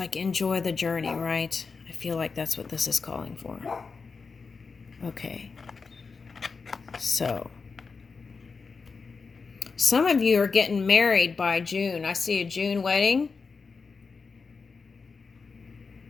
enjoy the journey, right? I feel like that's what this is calling for. Okay, so some of you are getting married by June. I see a June wedding.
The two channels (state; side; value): quieter; right; 4.8 dB